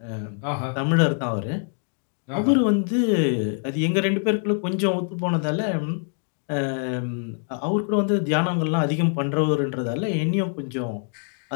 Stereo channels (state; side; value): silent; right; 55 dB below the other